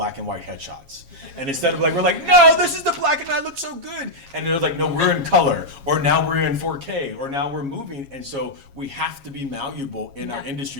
and white headshots. And instead of like, we're like, no, this is the black and I look so good. And they're like, no, we're in color, or now we're in 4K, or now we're moving. And so we have to be malleable in our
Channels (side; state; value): left; late; 7.3 ms